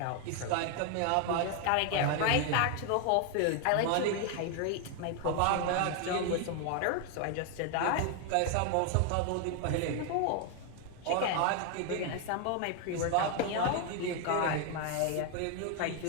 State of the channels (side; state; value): both; different; correlation 0.00